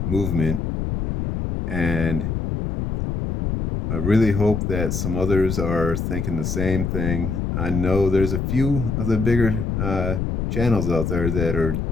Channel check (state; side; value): noise; left; rumble, 2 dB below the sound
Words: movement. And I really hope that some others are thinking the same thing. I know there's a few of the bigger channels out there that are